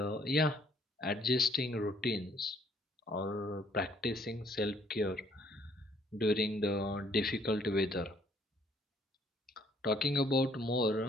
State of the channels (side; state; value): both; normal; correlation 0.64